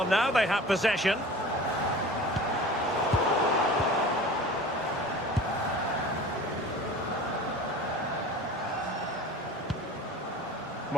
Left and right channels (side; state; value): both; normal; correlation 0.40